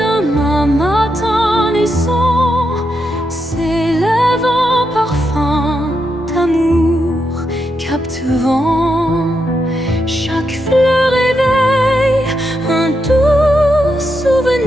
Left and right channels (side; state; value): both; normal; correlation 0.83